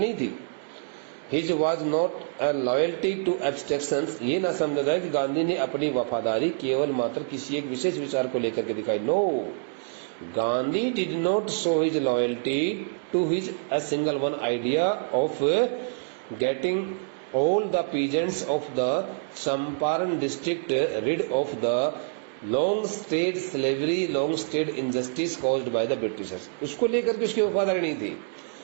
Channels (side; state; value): left; silent; digital silence